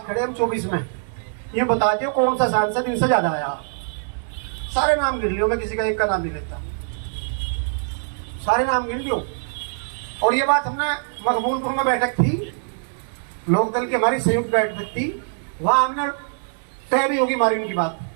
खड़े हम 24 में, ये बता दियो कौन सा सांसद इनसे ज्यादा आया। सारे नाम गिन लियो, मैं किसी का एक का नाम नहीं लेता, सारे नाम गिन लियो। और ये बात हमने मकबूलपुर में बैठक थी, लोकदल की हमारी संयुक्त बैठक थी, वहां हमने तय भी होगी मार्जिन की बात।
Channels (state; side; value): silent; left; digital silence